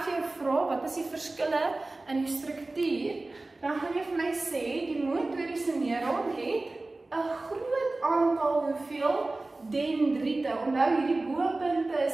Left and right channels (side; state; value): left; quieter; 3.1 dB